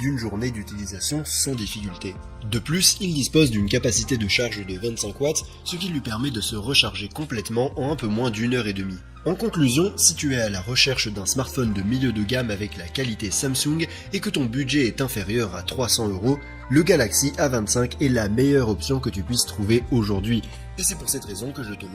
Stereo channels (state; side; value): identical; both; correlation 1.00